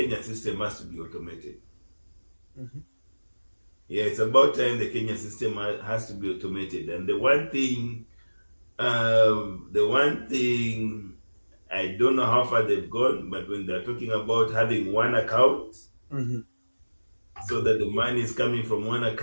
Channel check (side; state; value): both; inverted; correlation -1.00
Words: system has to be automated. Mm-hmm. Yeah, it's about time the Kenya system has to be automated. And the one thing, I don't know how far they've gone, but when they're talking about having one account, Mm-hmm. so that the money is coming from one